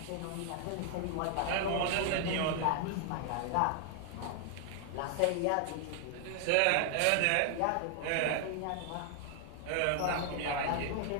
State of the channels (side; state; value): both; different; correlation 0.00